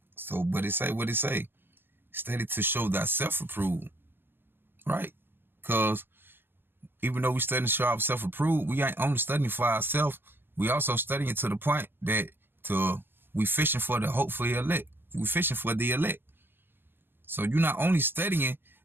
So, but it say what it say. Study to show thyself approved. Right? Because even though we studying to show ourselves approved, we ain't only studying for ourselves. We also studying to the point that we fishing for the hopefully elect. We fishing for the elect. So you're not only studying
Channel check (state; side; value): late; left; 0.10 ms